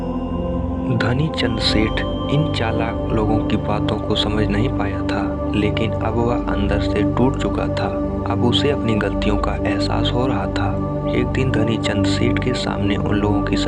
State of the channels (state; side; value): identical; both; correlation 1.00